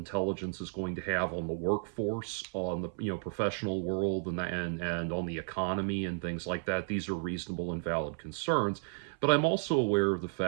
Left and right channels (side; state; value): left; silent; 56 dB below the other